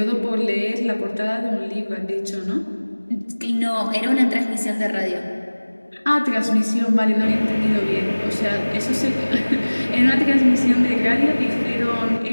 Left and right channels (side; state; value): both; inverted; correlation -1.00